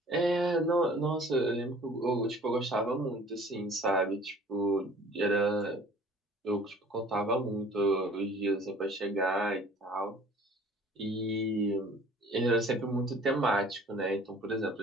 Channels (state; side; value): normal; both; correlation 0.50